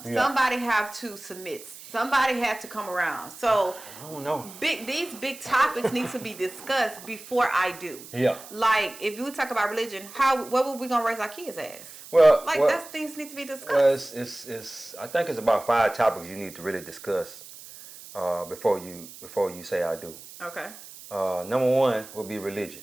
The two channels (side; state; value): right; noise; hiss, 16 dB below the sound